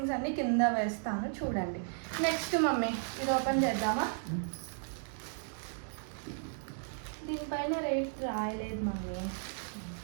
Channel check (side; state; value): left; silent; digital silence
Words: అన్నీ కింద వేస్తాను, చూడండి. నెక్స్ట్ మమ్మీ, ఇది ఓపెన్ చేద్దామా? దీనిపైన రేట్ రాయలేదు మమ్మీ.